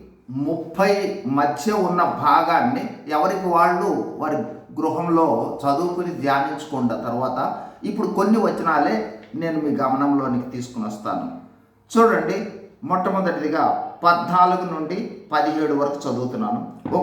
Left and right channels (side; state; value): both; identical; correlation 1.00